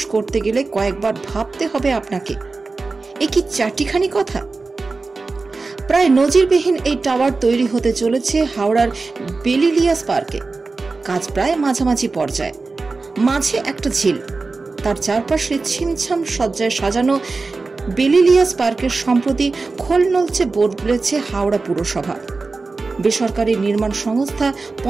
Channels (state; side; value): quieter; left; 3.9 dB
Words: করতে গেলে কয়েকবার ভাবতে হবে আপনাকে। এ কি চারটিখানি কথা? প্রায় নজিরবিহীন এই টাওয়ার তৈরি হতে চলেছে হাওড়ার বেলিলিয়াস পার্কে। কাজ প্রায় মাঝামাঝি পর্যায়ে। মাঝে একটা ঝিল, তার চারপাশে ছিমছাম সজ্জায় সাজানো বেলিলিয়াস পার্কের সম্প্রতি খোল নলচে বদলেছে হাওড়া পুরসভা। বেসরকারি নির্মাণ সংস্থা